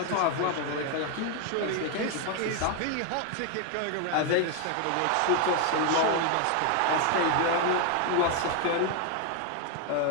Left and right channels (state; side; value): different; both; correlation 0.01